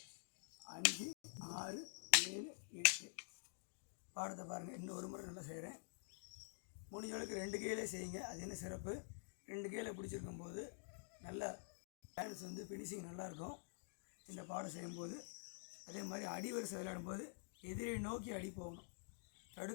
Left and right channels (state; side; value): silent; right; digital silence